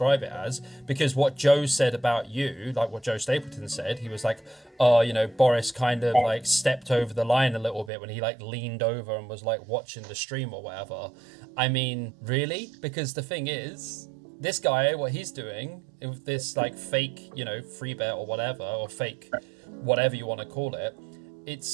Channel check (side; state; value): left; drops out; at 7.9 s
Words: it as, because what Joe said about you, like what Joe Stapleton said, he was like, oh, Boris kind of like stepped over the line a little bit when he like leaned over and was like watching the stream or whatever. I mean, really? Because the thing is, this guy, what he's doing with this like fake, free bet or whatever, or fake whatever you want to call it,